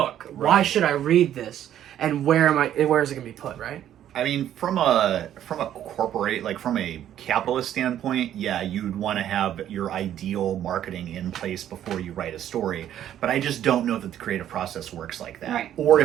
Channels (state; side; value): quieter; left; 11.1 dB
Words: Right. Why should I read this? And where is it going to be put, right? I mean, from a corporate, from a capitalist standpoint, yeah, you'd want to have your ideal marketing in place before you write a story. But I just don't know that the creative process works like that. Right. Or